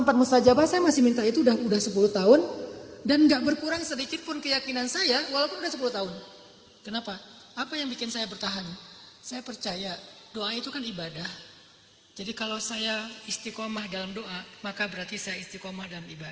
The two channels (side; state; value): both; identical; correlation 1.00